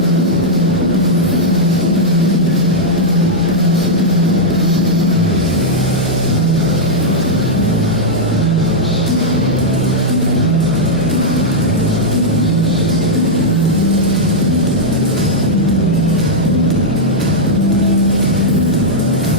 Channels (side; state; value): both; normal; correlation -0.05